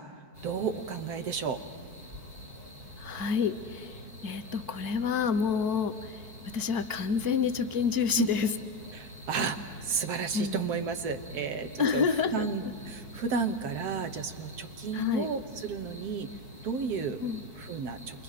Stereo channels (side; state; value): left; late; 4.6 ms